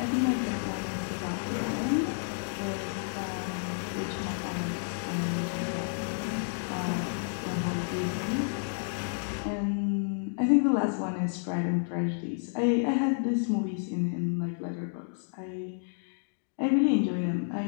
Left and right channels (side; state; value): right; silent; digital silence